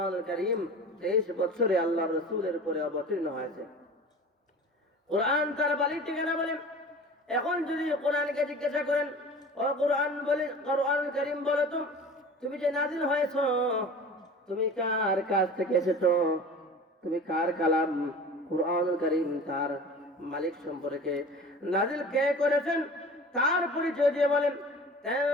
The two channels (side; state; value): both; normal; correlation 0.39